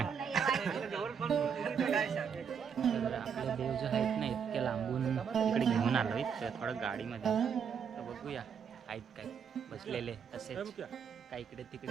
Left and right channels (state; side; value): quieter; left; 7.0 dB